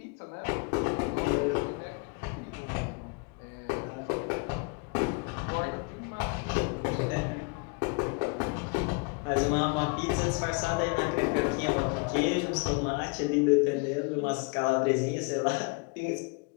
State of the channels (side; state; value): right; quieter; 32.4 dB